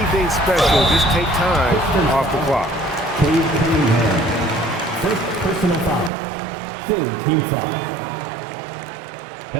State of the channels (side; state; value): left; drops out; at 6.1 s